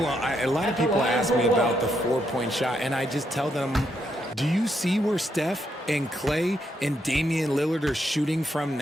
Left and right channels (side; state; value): both; normal; correlation 0.78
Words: lot of people ask me about the 4-point shot, and I just tell them, do you see where Steph and Clay and Damian Lillard are shooting from